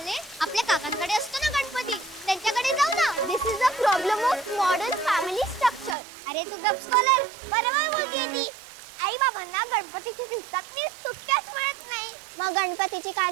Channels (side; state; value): left; drops out; at 6.0 s